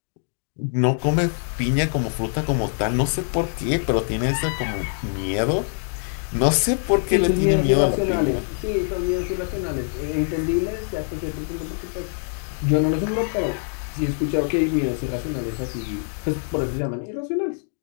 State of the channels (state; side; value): silent; right; digital silence